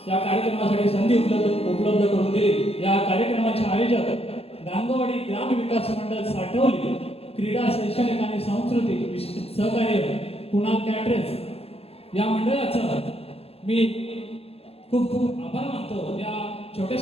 त्या कार्यक्रमासाठी संधी उपलब्ध करून दिली. या कार्यक्रमाचे आयोजक गांगोवाडी ग्राम विकास मंडळ साठवली, क्रीडा शैक्षणिक आणि सांस्कृतिक सहकार्य कुणाल कॅटरेस या मंडळाचं मी खूप खूप आभार मानतो. या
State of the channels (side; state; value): right; late; 0.29 ms